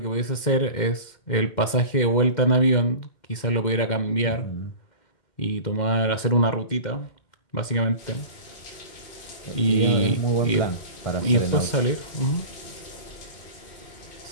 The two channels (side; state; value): right; late; 2.1 ms